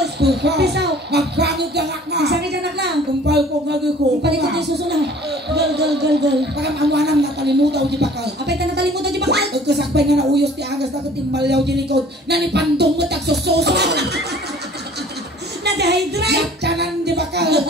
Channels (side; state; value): both; normal; correlation 0.51